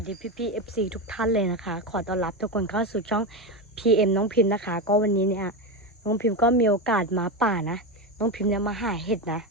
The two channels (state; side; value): normal; both; correlation 0.15